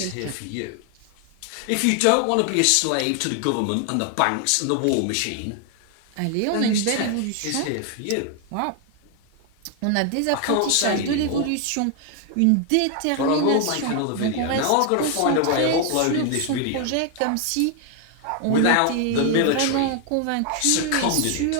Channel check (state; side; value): different; both; correlation 0.01